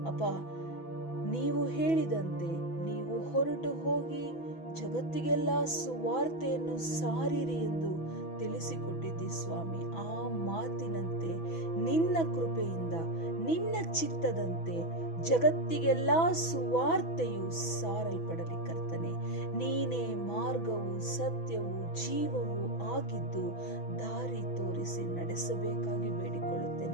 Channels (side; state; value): right; late; 6.1 ms